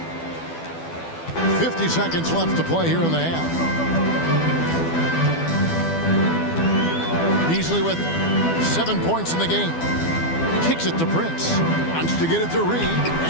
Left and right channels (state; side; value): late; right; 12 ms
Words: 50 seconds left to play here in the half. Beasley with 7 points in the game. Kicks it to Prince. Wants to get it to Reed,